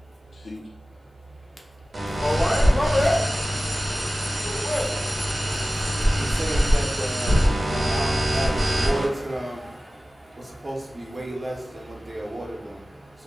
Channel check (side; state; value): both; normal; correlation 0.96